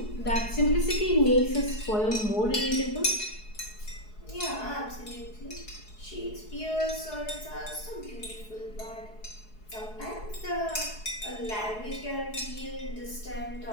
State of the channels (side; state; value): right; late; 4.7 ms